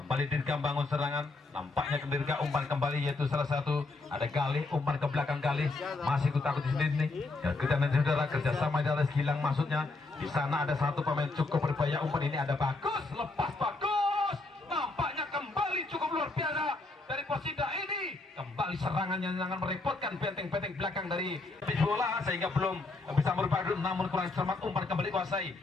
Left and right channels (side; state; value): right; quieter; 3.3 dB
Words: Dirga bangun serangan. Nampaknya ke Dirga, umpan kembali, yaitu salah satu ada Galih, umpan ke belakang Galih, masih takut di sini nih. Ya, kita nanti saudara kerjasama di atas Gilang maksudnya. Di sana ada satu pemain, cukup berbahaya umpan ini, ada Bagus, lepas Bagus. Nampaknya kembali cukup luar biasa dari Persida ini. Kembali serangannya sangat merepotkan benteng-benteng belakang dari bola sehingga belum bisa merubah, namun kurang cermat umpan kembali kuasai.